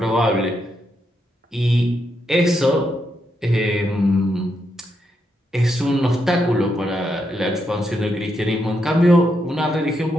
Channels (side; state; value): both; normal; correlation 0.81